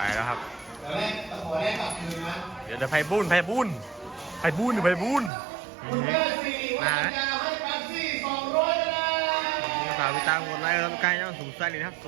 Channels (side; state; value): left; drops out; at 5.3 s